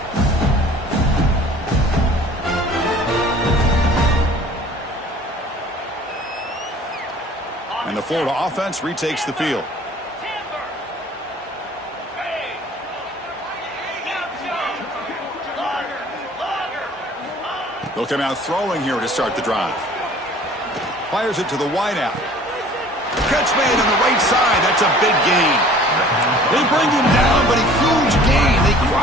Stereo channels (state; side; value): normal; both; correlation 0.50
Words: And the Florida offense retakes the field. They'll come out throwing here to start the drive. Fires it to the wideout. Catch made on the right side. That's a big gain. They bring him down, but a huge gain. They